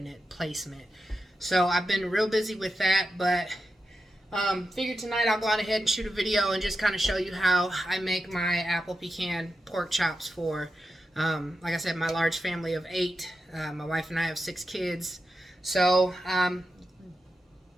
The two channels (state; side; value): normal; both; correlation 0.89